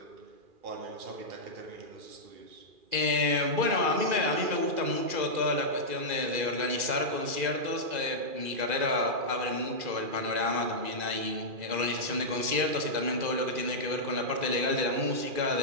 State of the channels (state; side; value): late; left; 2.4 ms